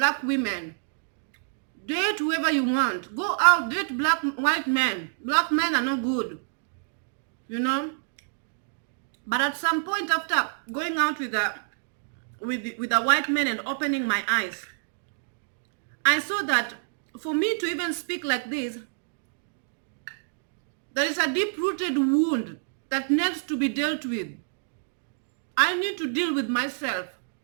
women. Date whoever you want. Go out, date white men. Black men are not good. You know? But at some point, after going out with a white man and opening my eyes, I saw that for me to even speak like this, there is a deep-rooted wound that needs to be dealt with. I need to deal with myself.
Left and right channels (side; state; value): left; silent; digital silence